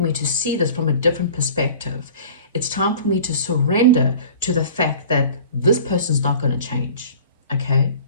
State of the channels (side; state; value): both; inverted; correlation -0.44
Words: me to see this from a different perspective. It's time for me to surrender to the fact that this person's not going to change, okay?